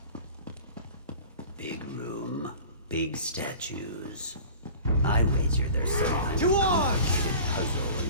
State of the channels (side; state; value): both; inverted; correlation -0.41